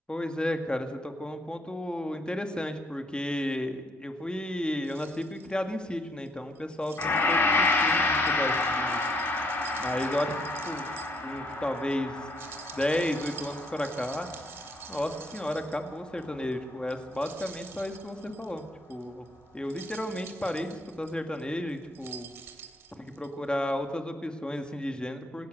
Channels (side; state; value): both; normal; correlation 0.69